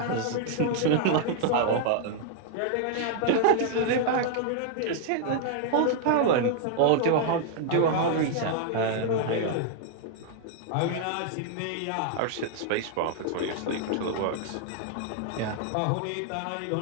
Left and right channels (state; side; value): different; both; correlation 0.00